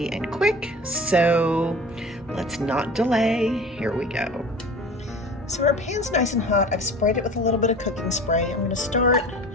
and quick, so let's not delay. Here we go. So our pan's nice and hot. I've sprayed it with a little bit of cooking spray. I'm gonna start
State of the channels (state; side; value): normal; both; correlation 0.39